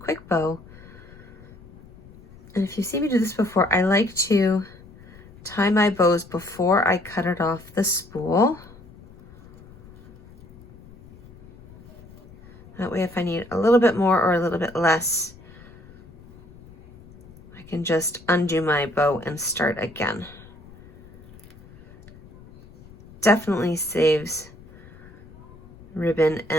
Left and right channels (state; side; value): noise; left; rumble, 22 dB below the sound